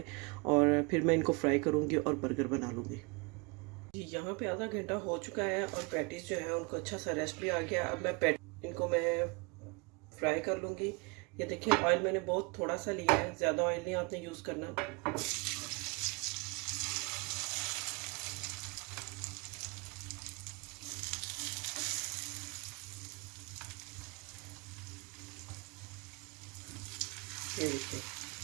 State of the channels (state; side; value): quieter; left; 29.1 dB